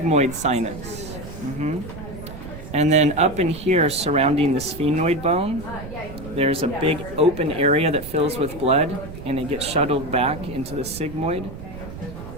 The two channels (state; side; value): noise; right; rumble, 12 dB below the sound